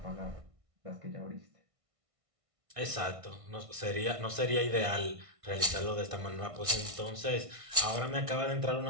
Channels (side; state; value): left; late; 1.5 ms